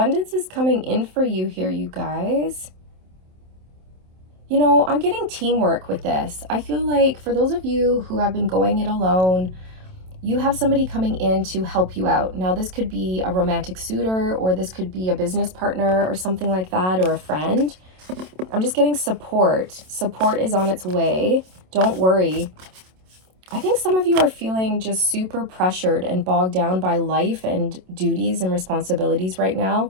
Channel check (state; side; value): late; left; 27 ms